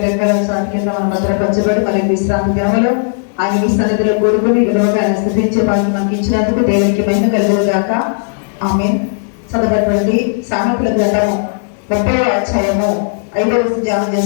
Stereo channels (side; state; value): right; silent; digital silence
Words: రెక్కల చాటు కింద మనం భద్రపరచబడి మరి విశ్రాంతి దినములో ఆయన మీ సన్నిధిలో కూడుకుని విలువగా ఆయన స్థుతించే భాగ్యం మనకి ఇచ్చినందుకు దేవునికి మహిమ కలుగును గాక. ఆమేన్. చదవబడినటువంటి సామెతల గ్రంథము 30వ అధ్యాయము 5వ వచనం ధ్యానం